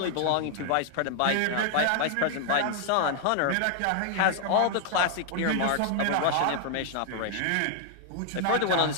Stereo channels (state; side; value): different; both; correlation 0.00